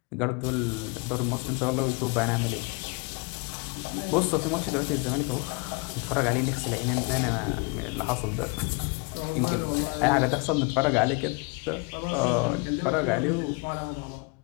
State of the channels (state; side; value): quieter; right; 30.1 dB